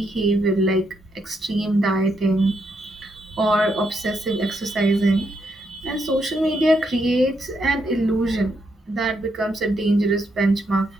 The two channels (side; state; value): both; normal; correlation 0.78